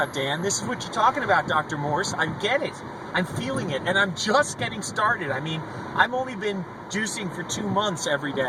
Dan. This is what you're talking about, Dr. Morse. I get it. I'm feeling it, and I'm just getting started. I mean, I've only been juicing for 2 months every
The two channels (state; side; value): identical; both; correlation 1.00